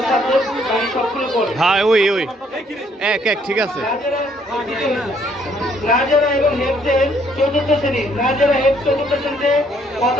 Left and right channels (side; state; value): both; normal; correlation 0.66